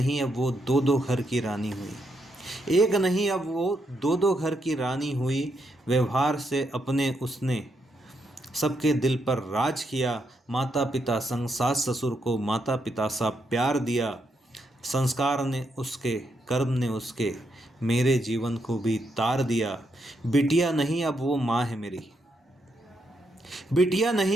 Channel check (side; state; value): both; normal; correlation 0.79